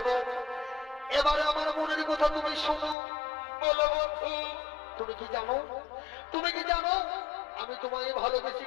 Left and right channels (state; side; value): drops out; right; at 3.0 s